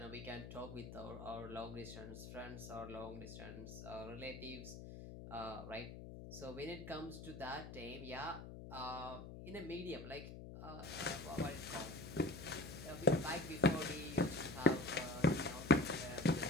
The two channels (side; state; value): left; noise; hum, 11 dB below the sound